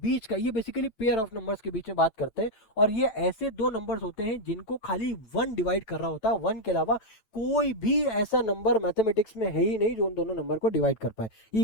का, ये बेसिकली पेयर ऑफ नंबर्स के बीच में बात करते हैं, और ये ऐसे दो नंबर्स होते हैं जिनको खाली वन डिवाइड कर रहा होता है, वन के अलावा कोई भी ऐसा नंबर मैथमेटिक्स में है ही नहीं जो उन दोनों नंबर को डिवाइड कर पाए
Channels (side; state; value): right; late; 9.0 ms